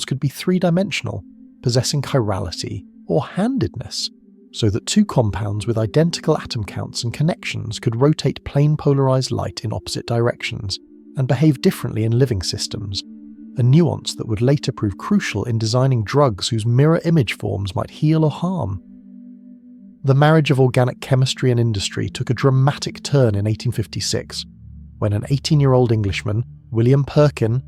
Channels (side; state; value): both; identical; correlation 1.00